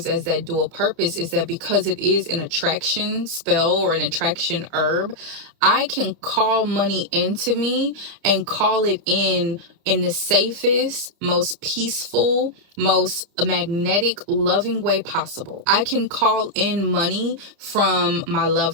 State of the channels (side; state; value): left; late; 29 ms